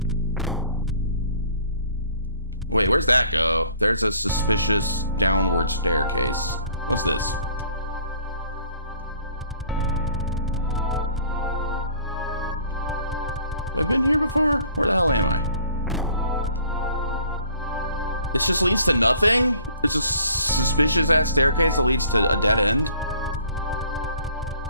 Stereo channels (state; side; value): inverted; both; correlation -0.54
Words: Wait, where's that go? There's a suspicious downward staircase. What's this? Have I been here before? Where the hell am I? This just leads to nothing? There's a suspicious ass staircase that leads to a dead end?